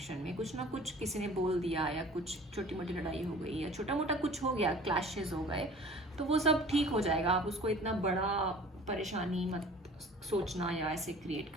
में, कुछ ना कुछ किसी ने बोल दिया या कुछ छोटी मोटी लड़ाई हो गई या छोटा मोटा कुछ हो गया, क्लैशेस हो गए, तो वो सब ठीक हो जाएगा। आप उसको इतना बड़ा परेशानी मत सोचना या ऐसे क्रिएट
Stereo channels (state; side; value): normal; both; correlation 0.46